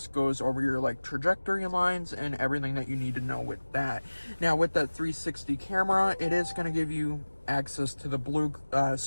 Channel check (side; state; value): both; inverted; correlation -1.00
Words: goes over your like trajectory lines and everything that you need to know with that. Now, with that 360 camera, it is going to give you access to the blue